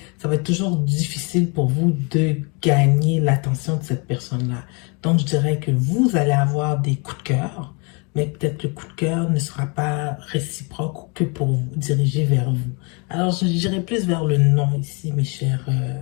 Ça va être toujours difficile pour vous de gagner l'attention de cette personne-là. Donc, je dirais que vous allez avoir des coups de cœur, mais peut-être le coup de cœur ne sera pas réciproque ou que pour vous, dirigé vers vous. Alors, je dirais plus vers le non ici, mes chers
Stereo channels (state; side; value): quieter; right; 32.5 dB